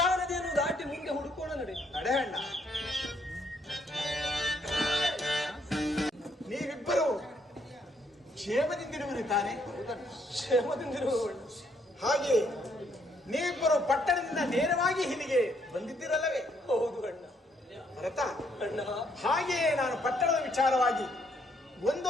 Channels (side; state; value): both; normal; correlation 0.71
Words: ನದಿಯನ್ನು ದಾಟಿ ಮುಂದೆ ಹುಡುಕೋಣ, ನಡೆಯಣ್ಣ. ನೀವಿಬ್ಬರು ಕ್ಷೇಮದಿಂದಿರುವಿರಿ ತಾನೆ? ಕ್ಷೇಮದಿಂದಿರುವವಳು. ಹಾಗೆ ನೀವಿಬ್ಬರು ಪಟ್ಟಣದಿಂದ ನೇರವಾಗಿ ಇಲ್ಲಿಗೆ ಬಂದಿದ್ದಿರಲ್ಲವೇ? ಹೌದು ಅಣ್ಣ. ಭರತ, ಅಣ್ಣ, ಹಾಗೆಯೇ ನಾನು ಪಟ್ಟಣದ ವಿಚಾರವಾಗಿ